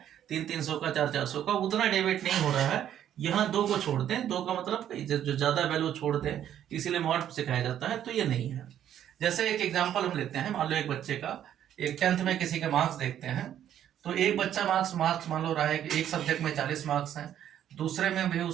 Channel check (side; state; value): left; quieter; 10.6 dB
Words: 300 का, 400 का, उतना डेविएट नहीं हो रहा है। यहाँ 2 को छोड़ते हैं, 2 का मतलब जो ज्यादा वैल्यू छोड़ते हैं, इसीलिए मॉड सिखाया जाता है, तो ये नहीं है। जैसे एक एग्जाम्पल हम लेते हैं, मान लो एक बच्चे का, एक 10th में किसी के मार्क्स देखते हैं, तो एक बच्चा मार्क्स मान लो रहा है कि एक सब्जेक्ट में 40 मार्क्स हैं, दूसरे में भी